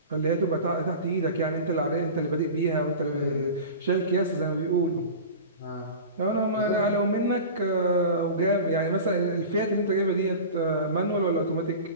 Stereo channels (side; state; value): both; inverted; correlation -0.34